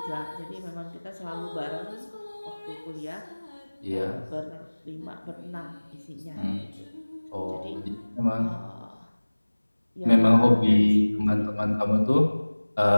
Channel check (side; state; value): both; inverted; correlation -1.00